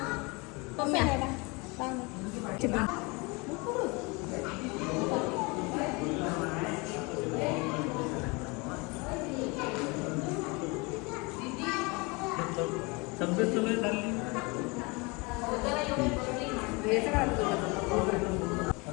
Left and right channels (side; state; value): right; quieter; 27.6 dB